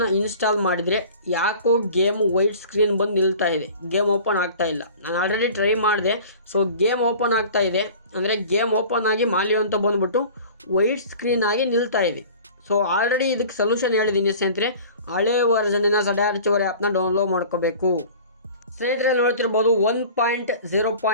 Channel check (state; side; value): inverted; both; correlation -0.43